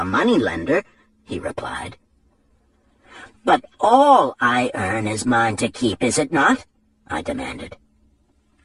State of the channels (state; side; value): identical; both; correlation 1.00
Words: money-lender," he replied. "But all I earn is mine to keep, is it not?" I demanded.